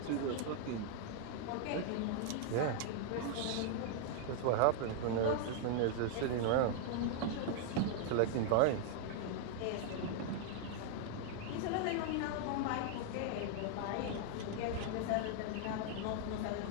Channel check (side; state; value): both; different; correlation 0.00